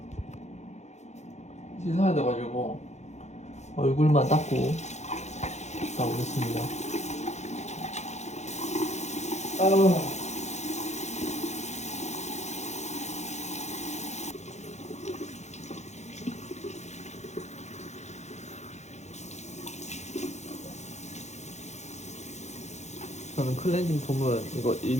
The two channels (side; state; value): right; late; 0.33 ms